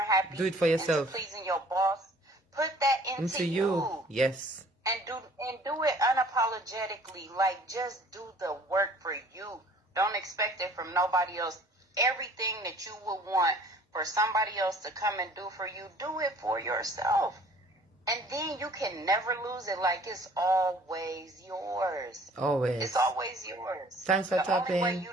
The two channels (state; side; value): normal; both; correlation 0.53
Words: happy. Do it for yourself. Into pleasing your boss. Put that into you. Yes. And do it unapologetically. Like, just do the work for you. Don't expect it from nobody else. Everything that you would want for somebody else to come and do for you, do it for yourself. And then you can never lose it. Like, it's always yours. Always. It's always yours. Thanks for the tapping. only way you